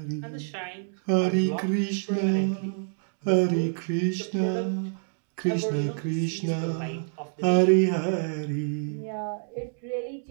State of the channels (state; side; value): silent; left; digital silence